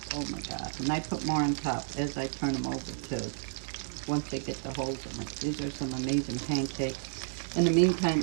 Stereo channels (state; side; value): silent; left; digital silence